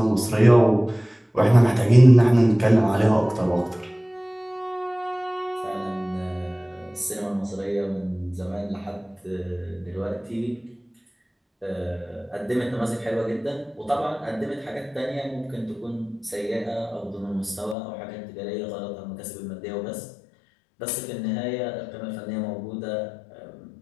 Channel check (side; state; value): right; drops out; at 17.8 s